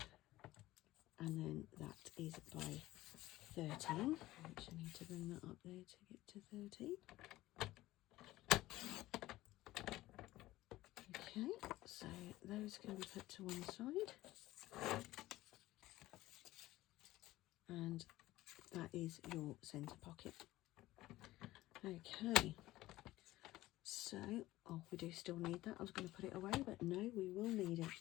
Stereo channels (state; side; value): quieter; right; 16.9 dB